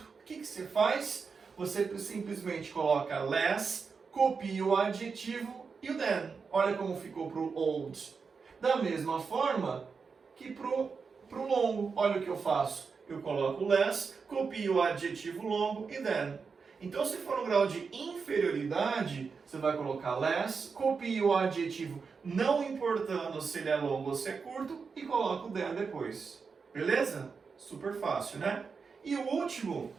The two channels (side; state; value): left; quieter; 5.3 dB